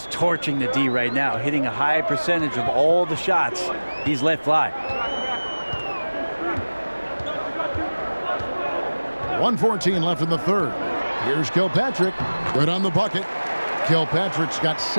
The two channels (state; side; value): inverted; both; correlation -1.00